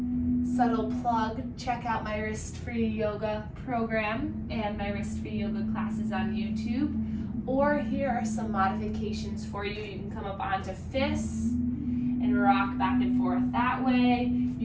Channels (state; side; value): identical; both; correlation 1.00